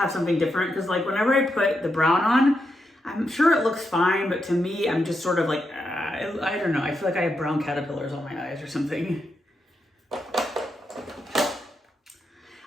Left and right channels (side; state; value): both; normal; correlation 0.84